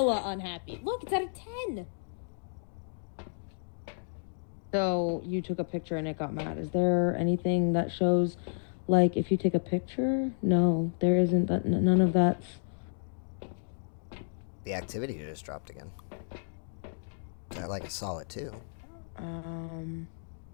unhappy. Look, it's at a 10. So you took a picture and it got mad. Is there anything that shows, like, if you take a picture? No, there isn't. That none of that's. The activity just dropped again. Like I saw it too.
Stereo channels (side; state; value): right; silent; digital silence